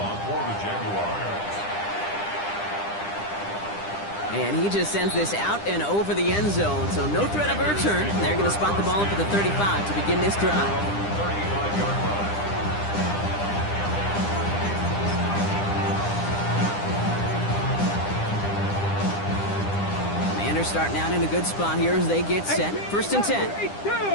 for the Jaguars. And he just sends this out and over the end zone, so no threat of a return. They're going to spot the ball up at the 35 to begin this drive. 35-yard line. Commanders starting out in a good spot here as they get set. 1st and 10.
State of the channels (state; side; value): late; right; 9.9 ms